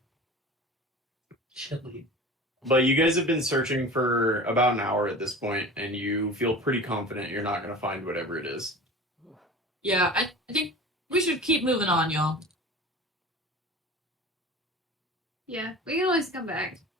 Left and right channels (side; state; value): both; normal; correlation 0.37